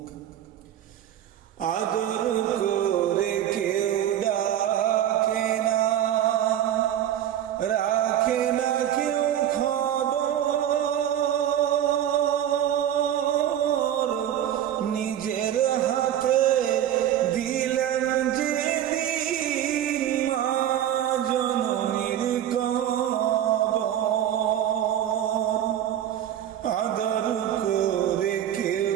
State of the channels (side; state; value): left; quieter; 10.9 dB